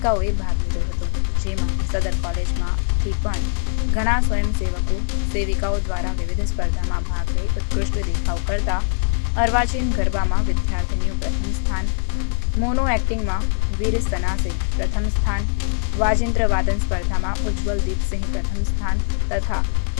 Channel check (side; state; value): right; silent; digital silence